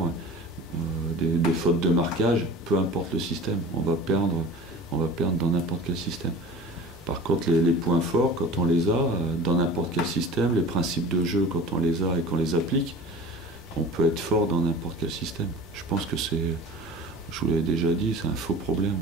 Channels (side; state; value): both; normal; correlation 0.40